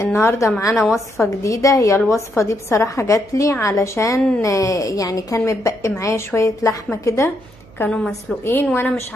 النهاردة معانا وصفة جديدة. هي الوصفة دي بصراحة جاتلي علشان يعني كان متبقي معايا شوية لحمة كده، كانوا مسلوقين وانا مش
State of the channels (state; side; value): noise; right; hum, 26 dB below the sound